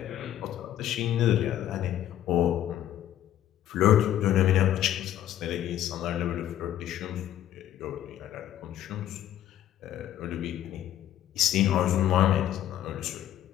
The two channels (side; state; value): right; quieter; 11.9 dB